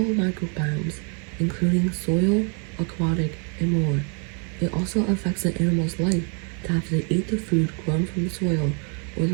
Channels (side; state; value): left; quieter; 38.5 dB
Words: microbiomes, including soil, aquatic, and more. It also affects the animal's life to have to eat the food grown from the soil, or